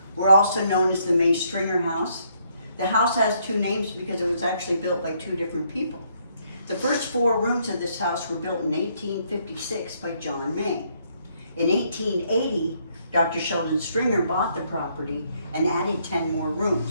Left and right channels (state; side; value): inverted; both; correlation -0.71